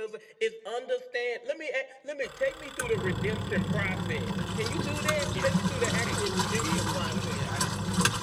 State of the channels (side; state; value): both; identical; correlation 1.00